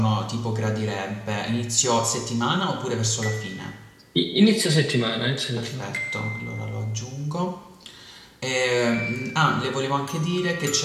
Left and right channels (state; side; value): identical; both; correlation 1.00